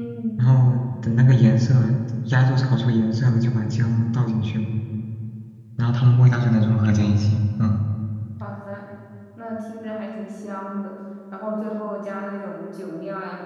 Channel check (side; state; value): both; identical; correlation 1.00